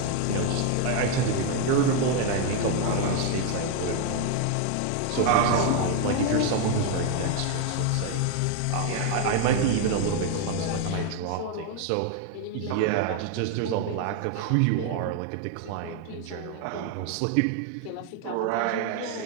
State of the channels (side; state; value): both; different; correlation 0.01